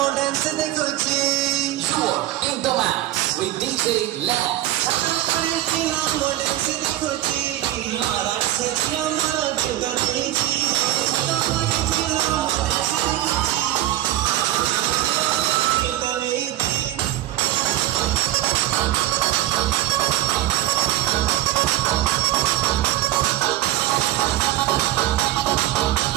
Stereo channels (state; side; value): quieter; left; 14.5 dB